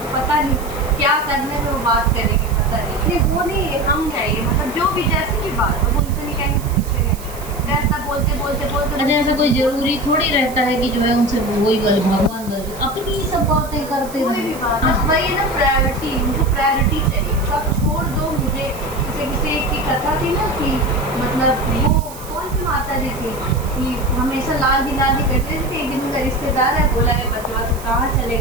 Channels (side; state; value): right; noise; hiss, 16 dB below the sound